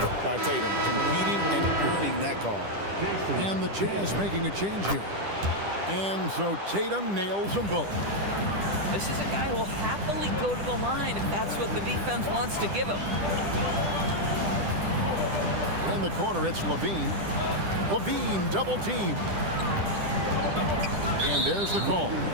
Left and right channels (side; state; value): left; late; 10 ms